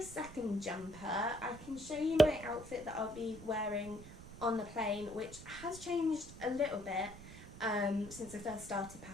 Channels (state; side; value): noise; right; rumble, 15 dB below the sound